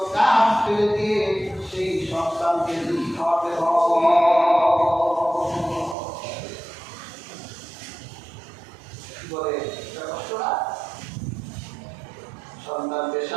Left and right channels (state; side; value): drops out; left; at 6.0 s